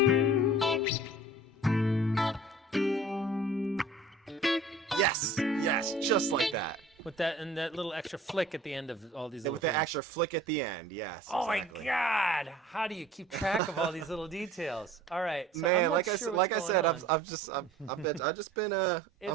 Yes, just like that. With that and that little extra flick at the end of all these. And Little with that things. extra flick at the end, yes. Oh exactly. my God! How do you keep track of all these little details? All right, so I'm Man, not like sure I what's said, going on. I've just been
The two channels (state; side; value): normal; both; correlation 0.46